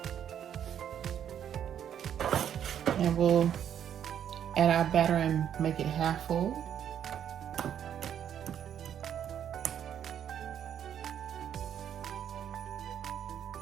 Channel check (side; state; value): left; quieter; 9.4 dB